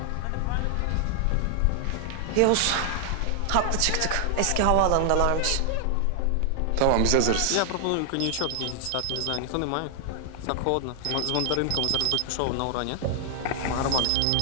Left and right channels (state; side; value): different; both; correlation 0.00